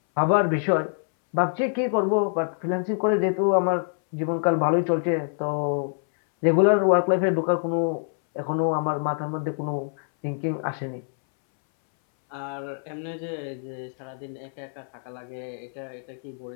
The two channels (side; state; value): right; silent; 62 dB below the other